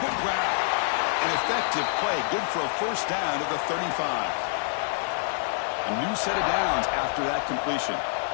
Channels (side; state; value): right; silent; digital silence